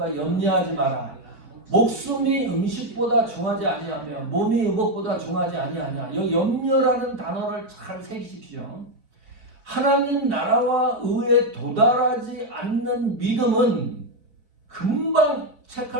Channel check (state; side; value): late; left; 4.8 ms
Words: 염려하지 마라. 목숨이 음식보다 중하지 아니하며 몸이 의복보다 중하지 아니하냐. 이 염려라는 단어를 잘 새기십시오. 하나님 나라와 의에 도달하지 않는 믿음은 금방